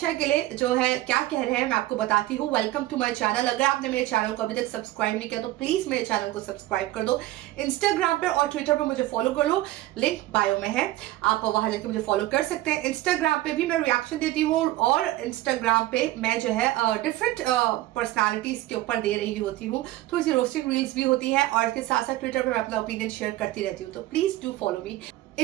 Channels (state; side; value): quieter; left; 16.3 dB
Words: के लिए जो है क्या कह रहे हैं मैं आपको बताती हूँ। Welcome to my channel. अगर आपने मेरे चैनल को अभी तक सब्सक्राइब नहीं किया तो प्लीज मेरे चैनल को सब्सक्राइब कर दो। इंस्टाग्राम पर और ट्विटर पर मुझे फॉलो कर लो, लिंक बायो में है, आप वहां जाके मुझे फॉलो कर सकते हैं। इंस्टाग्राम पे भी मैं रिएक्शन देती हूँ और इंस्टाग्राम पे मैं जो है डिफरेंट पर्सनालिटीज के ऊपर दे रही होती हूँ, थोड़ी सी रोस्टिंग रील्स भी होती है और इसके साथ साथ ट्विटर पर मैं अपना ओपिनियन शेयर करती रहती हूँ। तो please do follow me.